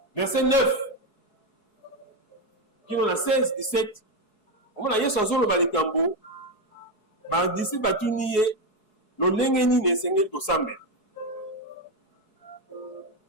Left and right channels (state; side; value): late; right; 4.7 ms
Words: verset 9, qui on a 16, 17. On a dit chanson le balikambo, d'ici batuniye, le lengeni ne sengel ko sambe.